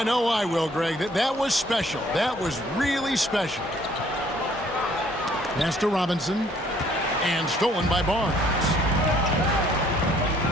know I will, Greg. That was special. That was really special. Pass to Robinson, and stolen by Barnes.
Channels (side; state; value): both; normal; correlation 0.61